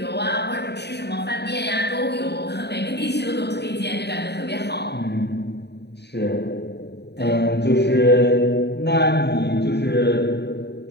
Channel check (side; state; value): right; late; 0.49 ms